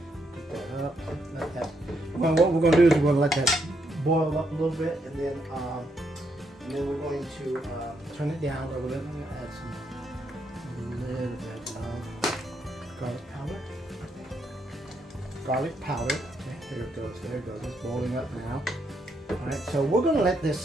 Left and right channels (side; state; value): both; normal; correlation 0.77